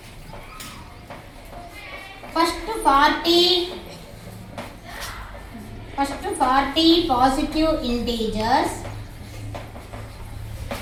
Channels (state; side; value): identical; both; correlation 1.00